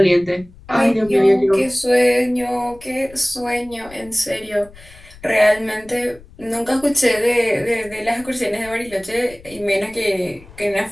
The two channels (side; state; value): left; noise; rumble, 22 dB below the sound